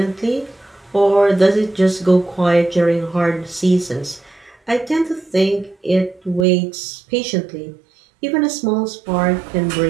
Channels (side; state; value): left; drops out; at 6.5 s